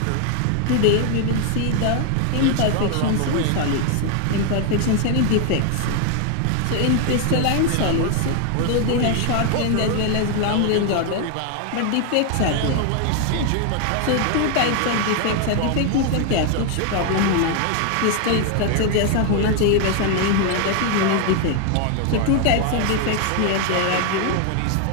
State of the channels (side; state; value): both; different; correlation 0.00